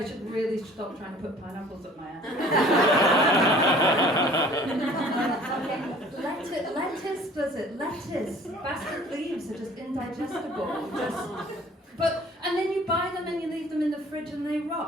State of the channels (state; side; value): normal; both; correlation 0.51